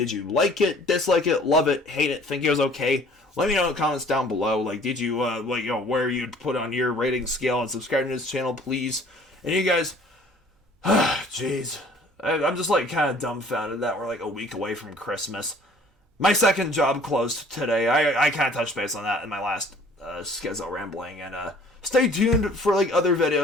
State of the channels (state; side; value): normal; both; correlation 0.53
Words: you like it, dislike it, love it, hate it, think it was okay? Let me know in the comments down below. Did you, where you'd put on your rating scale, and subscribe to this channel, please. And you guys, jeez, I'm just kind of dumbfounded that we're a week away from Christmas. My second job closed today. I kind of touched base on that in my last Schizo rambling, and stay tuned for other